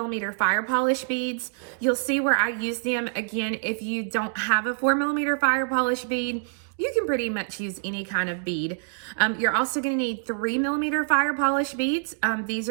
fire polish beads. You'll see where I use them. Again, if you don't have a 4mm fire polish bead, you can pretty much use any kind of bead. You're also going to need 3mm fire polish beads. These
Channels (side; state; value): left; silent; digital silence